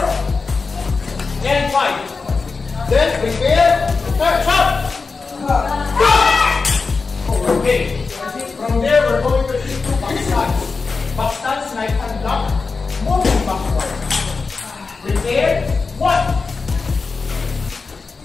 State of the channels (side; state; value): right; quieter; 4.4 dB